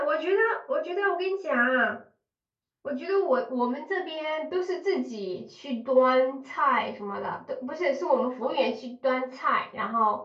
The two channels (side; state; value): both; identical; correlation 1.00